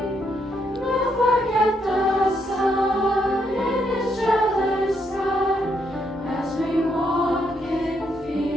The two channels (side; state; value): both; normal; correlation 0.76